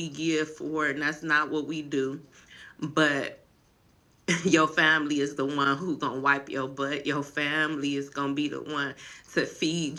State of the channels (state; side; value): identical; both; correlation 1.00